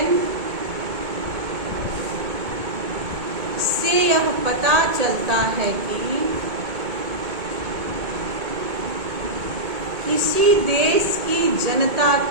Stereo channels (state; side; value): late; left; 1.8 ms